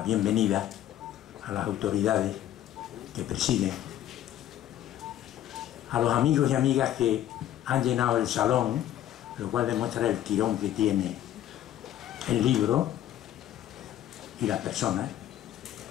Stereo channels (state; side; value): quieter; right; 12.0 dB